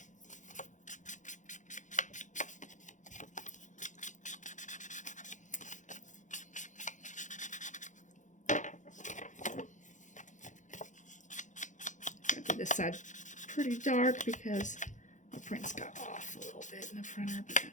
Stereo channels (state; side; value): late; right; 0.36 ms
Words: I did this side pretty dark because my prints got off a little bit in the printer, but